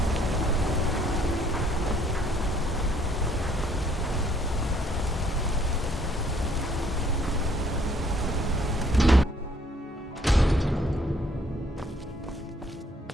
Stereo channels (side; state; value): both; normal; correlation 0.64